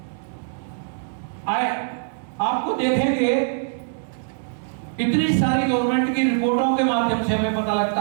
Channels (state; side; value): silent; left; digital silence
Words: आपको देखेंगे इतनी सारी गवर्नमेंट की रिपोर्टों के माध्यम से हमें पता